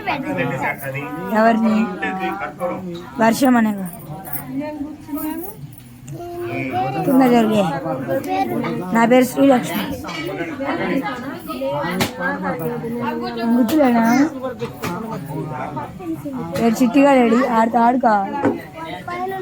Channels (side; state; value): both; identical; correlation 1.00